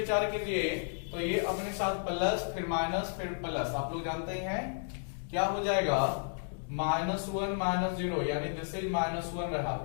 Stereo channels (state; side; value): silent; right; digital silence